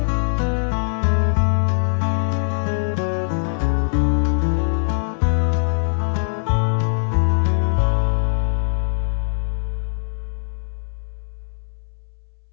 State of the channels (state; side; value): silent; right; 63 dB below the other